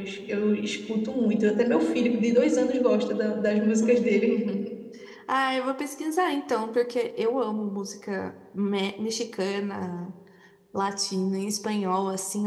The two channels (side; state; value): both; identical; correlation 1.00